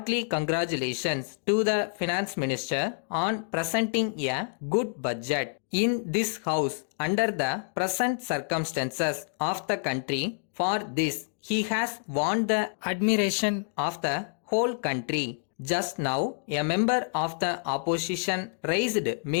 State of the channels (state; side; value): silent; right; digital silence